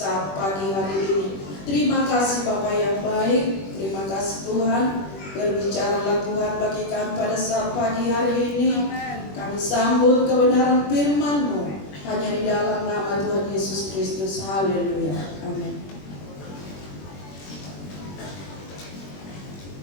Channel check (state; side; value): late; right; 21 ms